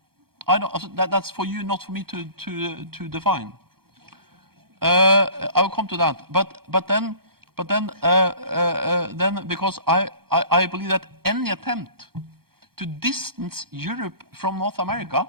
I don't. That's for you, not for me to define. I will come to that. But then because I believe that any attempt to distance Europe from North America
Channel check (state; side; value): late; left; 0.94 ms